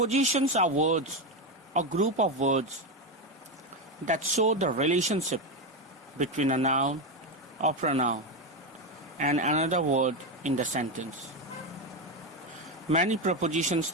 are words, a group of words that show the relationship between a noun or pronoun and another word in the sentence. Many prepositions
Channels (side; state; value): both; normal; correlation 0.12